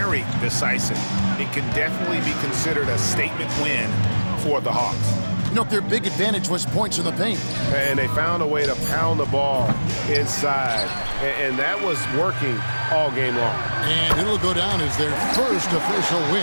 decisive. It can definitely be considered a statement win for the Hawks. You know, their big advantage was points in the paint. And they found a way to pound the ball inside. And that was working all game long. And it'll go down as their first official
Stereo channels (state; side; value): inverted; both; correlation -1.00